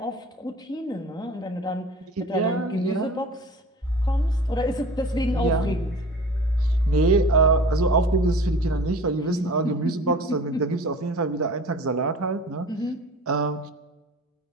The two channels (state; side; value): normal; both; correlation 0.42